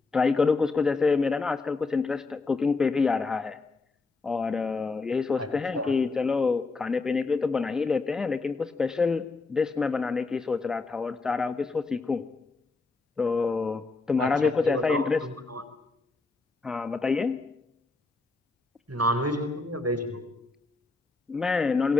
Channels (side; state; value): right; quieter; 3.8 dB